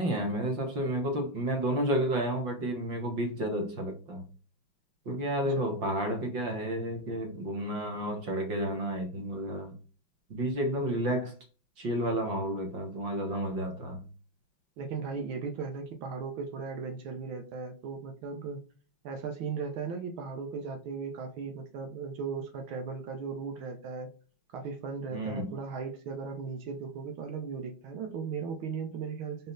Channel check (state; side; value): late; left; 5.7 ms